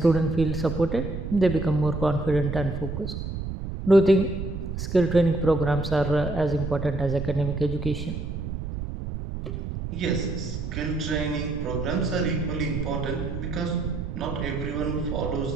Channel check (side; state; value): right; noise; rumble, 5 dB below the sound